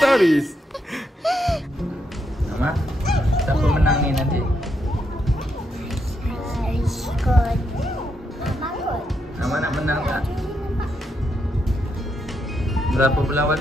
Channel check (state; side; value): normal; both; correlation 0.80